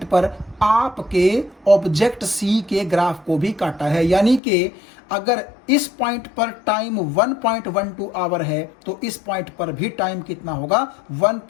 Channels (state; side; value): drops out; right; at 4.4 s